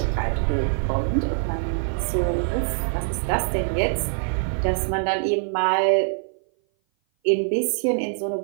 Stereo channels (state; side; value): silent; left; 57 dB below the other